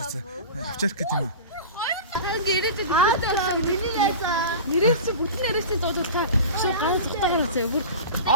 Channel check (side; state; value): both; inverted; correlation -0.33